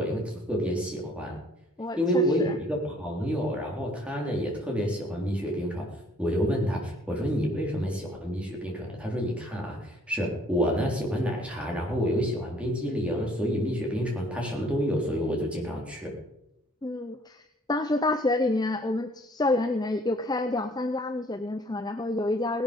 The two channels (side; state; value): both; normal; correlation 0.59